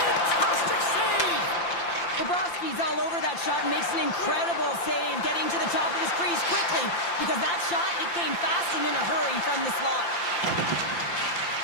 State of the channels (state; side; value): late; right; 5.8 ms